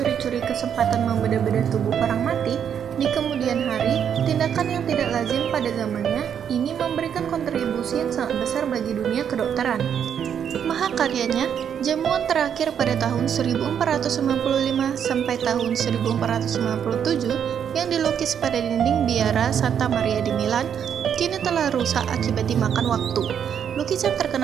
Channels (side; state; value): left; quieter; 8.4 dB